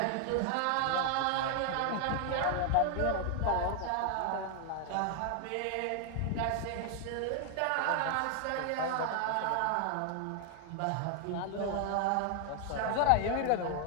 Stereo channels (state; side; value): different; both; correlation 0.00